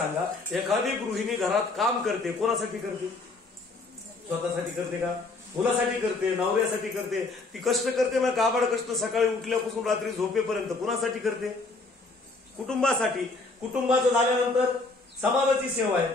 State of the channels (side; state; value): right; quieter; 3.5 dB